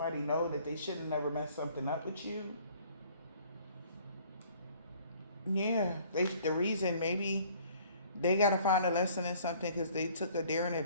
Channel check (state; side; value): inverted; both; correlation -0.56